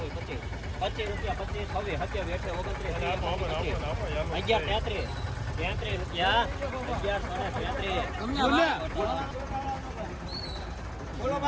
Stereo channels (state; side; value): identical; both; correlation 1.00